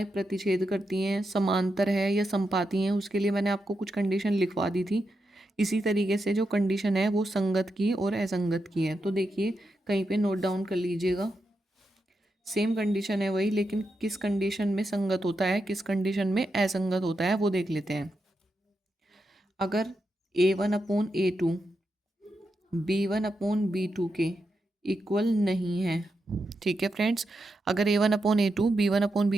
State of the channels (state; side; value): normal; both; correlation 0.86